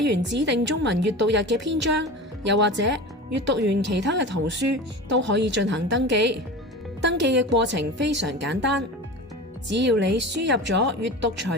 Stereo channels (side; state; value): both; normal; correlation 0.32